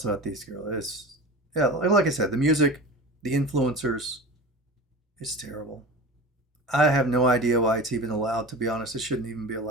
about these girls? Like I said, the music, the influencers, it's terrible. I have no idea why it's even allowed, to be honest. It shouldn't even be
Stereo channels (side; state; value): both; normal; correlation 0.33